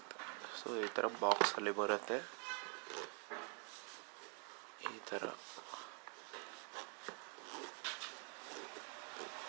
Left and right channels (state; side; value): quieter; left; 38.2 dB